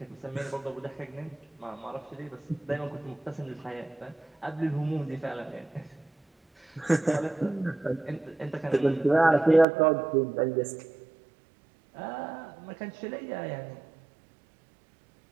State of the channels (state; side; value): drops out; left; at 9.7 s